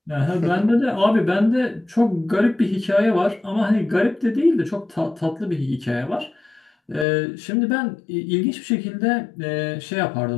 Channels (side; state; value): right; drops out; at 7.1 s